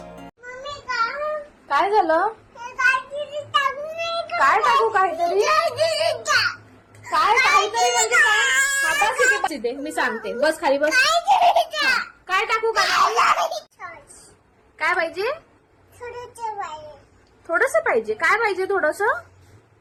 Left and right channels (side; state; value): both; identical; correlation 1.00